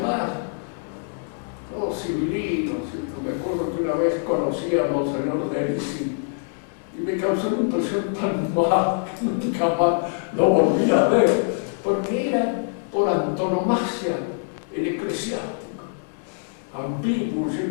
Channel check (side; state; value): right; silent; 62 dB below the other